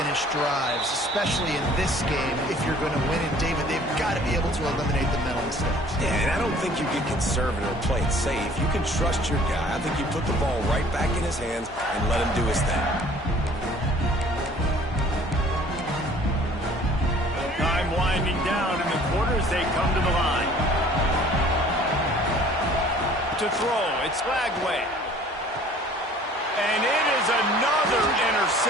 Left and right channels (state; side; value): normal; both; correlation 0.53